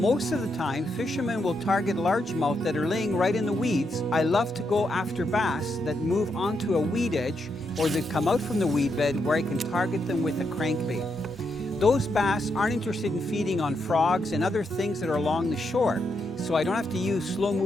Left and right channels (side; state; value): both; normal; correlation 0.81